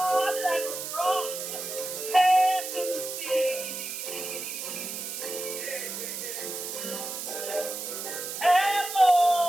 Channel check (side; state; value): right; noise; hiss, 6 dB below the sound